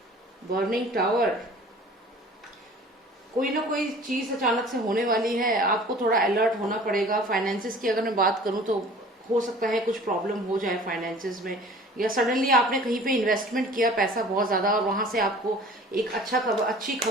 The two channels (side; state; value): both; normal; correlation 0.46